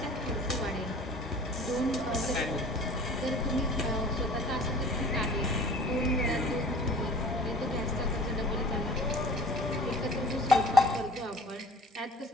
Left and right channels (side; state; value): both; normal; correlation 0.46